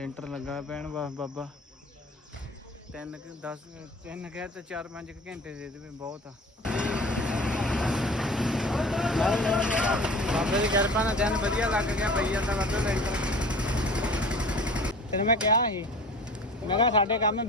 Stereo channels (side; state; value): both; normal; correlation 0.41